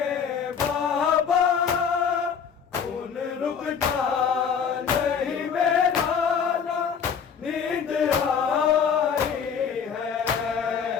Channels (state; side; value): quieter; right; 6.9 dB